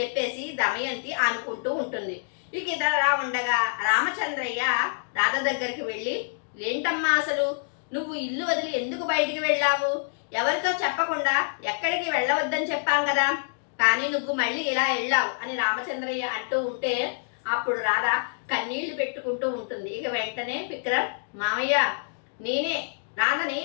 దమయంతి అనుకుంటూ ఉంటుంది. ఇక ఇదలా ఉండగా రామచంద్రయ్య రాధ దగ్గరికి వెళ్ళి, ఏంటమ్మా అసలు నువ్వు ఇల్లు వదిలి ఎందుకు బయటికి వెళ్ళావు? ఎవరితో చెప్పకుండా ఎక్కడికి వెళ్ళవద్దని చెప్పాం కదా, కానీ నువ్వు మళ్ళీ ఇలా వెళ్ళావు అని రామచంద్రయ్య అంటూ ఉంటే అప్పుడు రాధ కన్నీళ్లు పెట్టుకుంటూ ఉంటుంది. ఇక వెంటనే విక్రమ్, మామయ్య, నేనే రాధని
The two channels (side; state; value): right; silent; digital silence